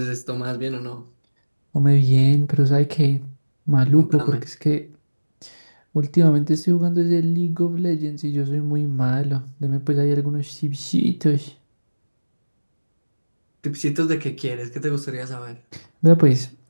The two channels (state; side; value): inverted; both; correlation -1.00